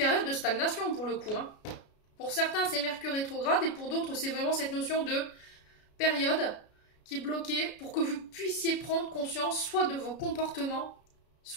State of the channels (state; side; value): late; right; 33 ms